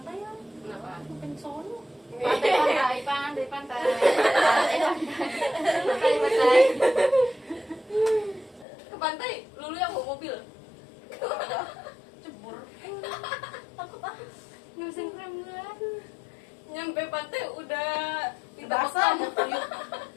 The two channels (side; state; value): right; drops out; at 8.7 s